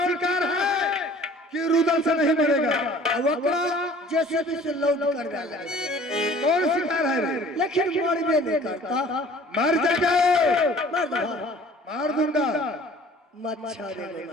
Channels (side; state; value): both; normal; correlation 0.49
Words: शिकार है कि रुदल से नहीं मरेगा। अब ओकरा जेसीबी से लोड कर डाला। कौन शिकार है रे। लेकिन मरबे नहीं करता। मर जाएगा। मार दो मार दूंगा। मच्छर रे